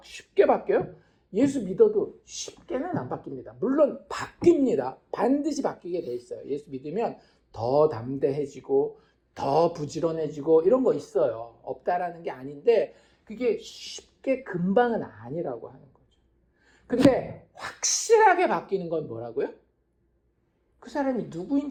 쉽게 바뀌어요? 예수 믿어도 쉽게는 안 바뀝니다. 물론 바뀝니다. 반드시 바뀌게 돼 있어요. 예수 믿으면 더 담대해지고 더 부지런해지고 이런 거 있어요. 없다라는 게 아닌데 그게 쉽게 금방은 아니라고 하는 거죠. 근데 확실하게 바뀌는 건 뭐라고요? 그 사람이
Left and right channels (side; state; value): both; identical; correlation 1.00